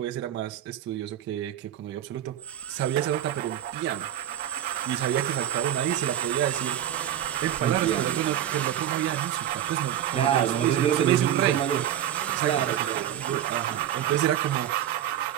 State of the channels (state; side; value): quieter; left; 11.2 dB